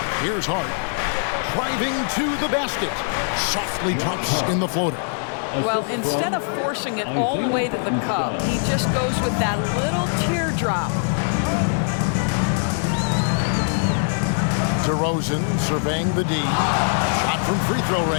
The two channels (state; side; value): silent; right; digital silence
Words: Here's Hart. Driving to the basket. Softly drops in the floater. Well, instead of forcing it all the way to the cup, he just goes with that little teardrop. DeRozan surveying the D. Shot from free throw